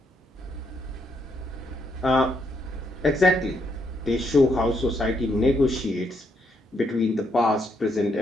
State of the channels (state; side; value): normal; both; correlation 0.76